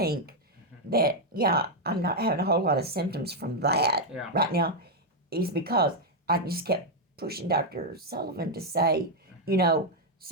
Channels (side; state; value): both; normal; correlation 0.00